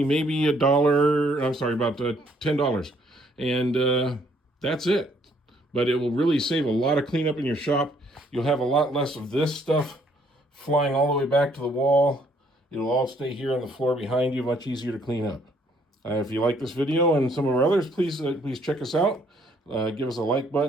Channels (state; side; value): normal; both; correlation 0.66